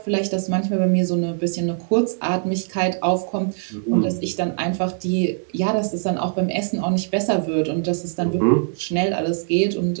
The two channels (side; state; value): left; silent; 63 dB below the other